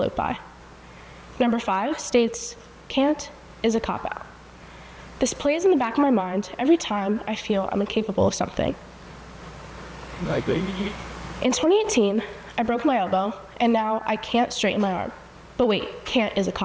by. Number 5 states, can't is a cop-out. This plays in the back of my mind every time I feel I'm incapable of something. In 2018, I broke my elbow, and now I can't straighten my arm. But wait, can't is a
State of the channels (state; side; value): identical; both; correlation 1.00